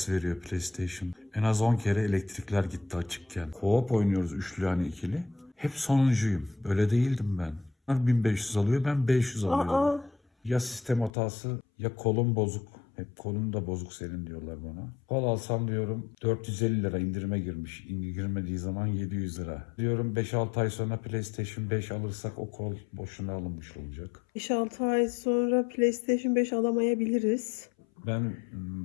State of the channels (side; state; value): right; drops out; at 11.1 s